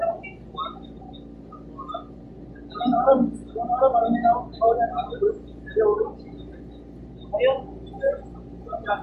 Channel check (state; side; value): identical; both; correlation 1.00